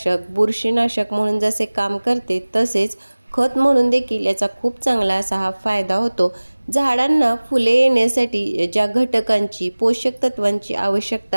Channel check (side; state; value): both; inverted; correlation -1.00